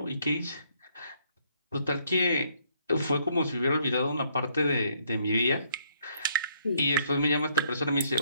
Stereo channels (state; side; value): inverted; both; correlation -0.68